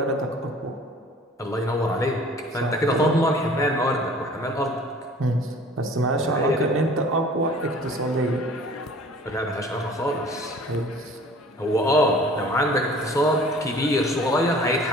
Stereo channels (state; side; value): normal; both; correlation 0.48